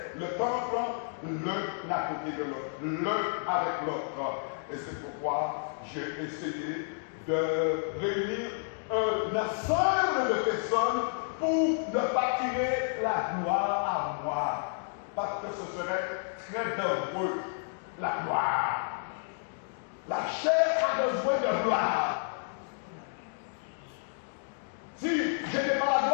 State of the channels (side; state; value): right; silent; digital silence